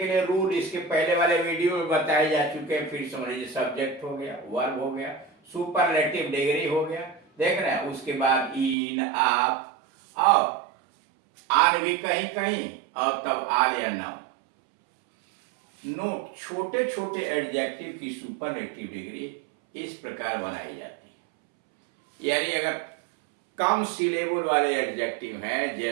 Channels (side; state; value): left; drops out; at 8.8 s